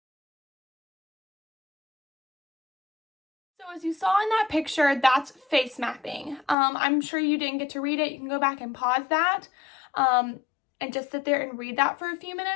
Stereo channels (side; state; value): right; drops out; at 6.6 s